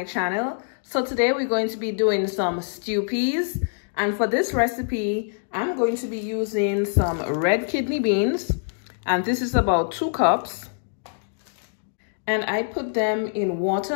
channel. So today we're going to be doing some stew peas, and for this recipe I'm going to be using some red kidney beans, and this is about 2 cups, and I put them in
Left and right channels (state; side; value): silent; right; digital silence